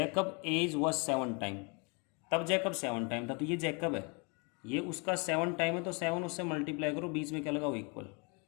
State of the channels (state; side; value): quieter; right; 33.0 dB